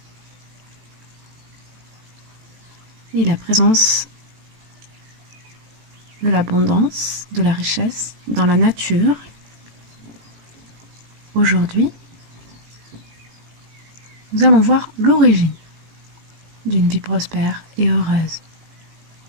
Et la présence de l'abondance, de la richesse dans la nature. Aujourd'hui, nous allons voir l'origine d'une vie prospère et heureuse.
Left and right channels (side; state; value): left; late; 18 ms